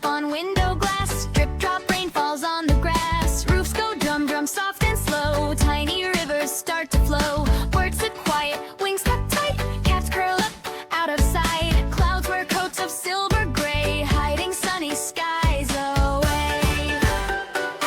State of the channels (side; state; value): both; identical; correlation 1.00